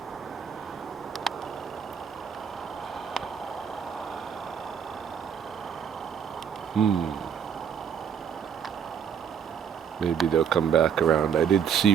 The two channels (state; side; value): quieter; left; 7.7 dB